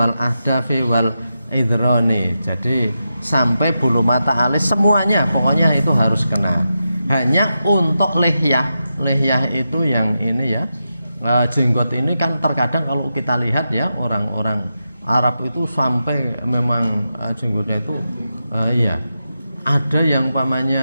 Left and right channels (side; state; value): both; inverted; correlation -0.88